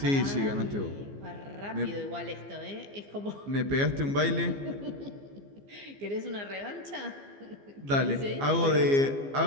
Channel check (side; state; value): left; late; 15 ms